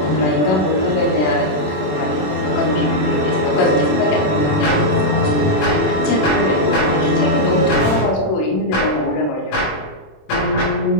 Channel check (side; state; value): right; late; 27 ms